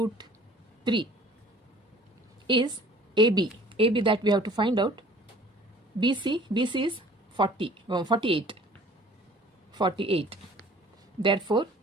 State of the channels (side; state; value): both; normal; correlation 0.51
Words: 3 is AB. AB that we have to find out. BC is 48. Therefore,